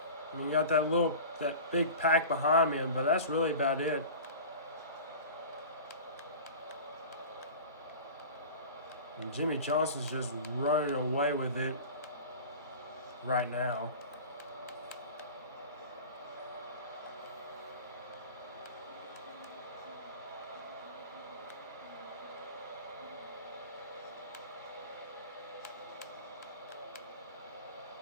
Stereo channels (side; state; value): both; inverted; correlation -0.36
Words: I mean, you got that big pack behind me, but that's really about it. And Jimmy Johnson's just running away with it right now.